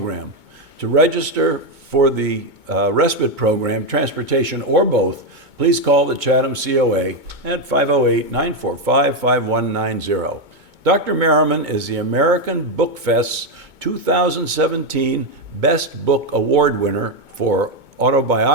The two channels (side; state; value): left; late; 2.2 ms